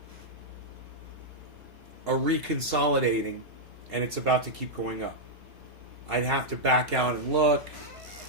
reconsolidating, and it's about to keep going up. I'd have to back out and look.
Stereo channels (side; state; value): left; late; 2.8 ms